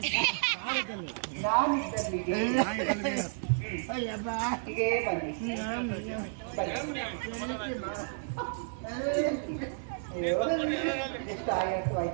ನಾನಿದ್ದಲ್ಲಿಗೆ ಅಯ್ಯಬ್ಬ ಹೀಗೆ ಬನ್ನಿ ಎಷ್ಟು ಆಯಾಸು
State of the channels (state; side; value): silent; left; digital silence